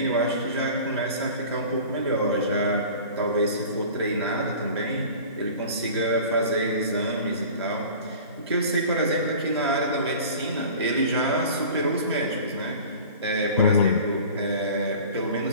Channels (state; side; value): inverted; both; correlation -0.41